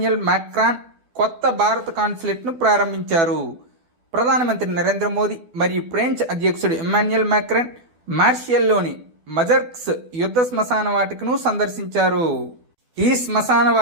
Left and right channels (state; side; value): late; left; 12 ms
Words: మాక్రాన్ కొత్త భారత కాన్సులేట్ను ప్రారంభించారు. ప్రధానమంత్రి నరేంద్ర మోదీ మరియు ఫ్రెంచ్ అధ్యక్షుడు ఇమ్మాన్యుయల్ మాక్రాన్ మార్షియల్లోని మజర్క్స్ యుద్ధ శ్మశాన వాటికను సందర్శించారు. ఈ శ్మశాన